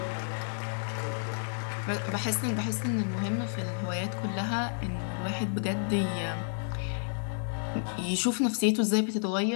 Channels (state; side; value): silent; right; digital silence